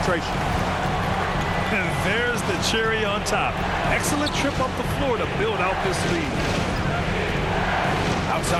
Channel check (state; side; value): identical; both; correlation 1.00